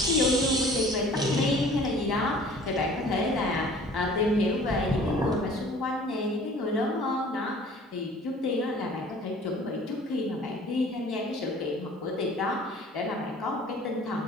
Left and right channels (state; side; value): normal; both; correlation 0.49